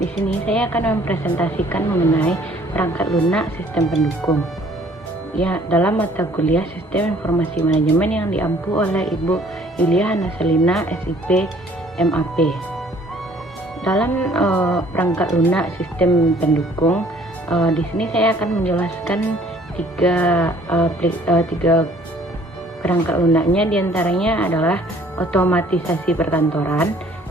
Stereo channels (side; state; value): both; normal; correlation 0.58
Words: Di sini saya akan mempresentasikan mengenai perangkat lunak sistem pendukung. Ya, dalam mata kuliah Sistem Informasi Manajemen yang diampu oleh Ibu Yulia Hanaselina, SIP, MAP. Dalam perangkat lunak sistem pendukung, di sini saya akan menjelaskan tiga perangkat lunaknya. Diantaranya adalah otomatisasi perkantoran,